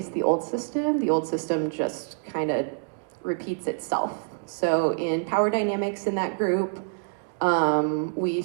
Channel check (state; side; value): silent; left; digital silence